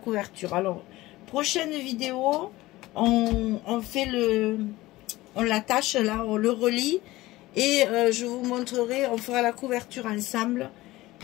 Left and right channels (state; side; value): quieter; right; 18.3 dB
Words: Alors, prochaine vidéo, on fait on l'attache là, on le relie. Et je vous montrerai, on fera la couverture ensemble